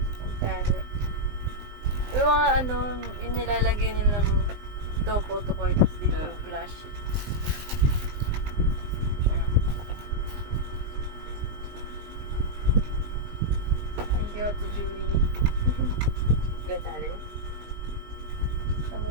Ang tali. Yung mga ano, inilalagay nilang ito, photo cards dito. Yeah. Flash. Thank you, Ate Julie. Gonzales. Ano?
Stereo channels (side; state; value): left; late; 19 ms